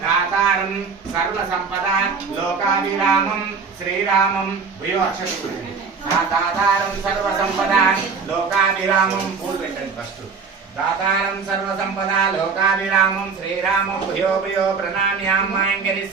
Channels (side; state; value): left; quieter; 5.3 dB